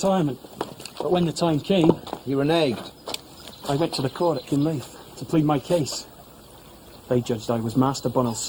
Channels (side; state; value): both; identical; correlation 1.00